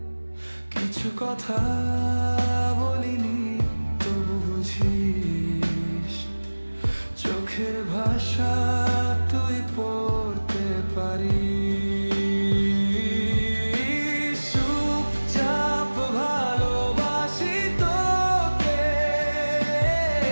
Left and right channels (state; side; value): inverted; both; correlation -1.00